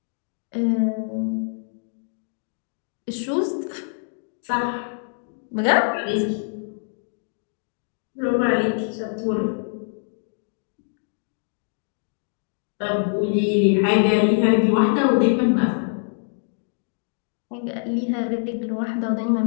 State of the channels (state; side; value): silent; right; digital silence